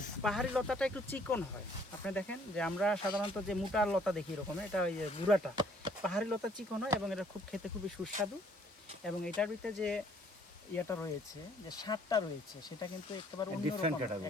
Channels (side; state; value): both; normal; correlation 0.61